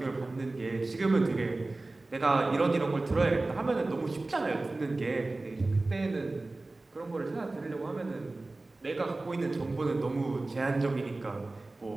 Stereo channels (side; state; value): left; quieter; 3.1 dB